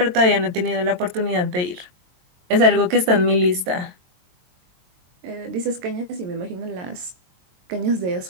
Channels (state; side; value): late; left; 22 ms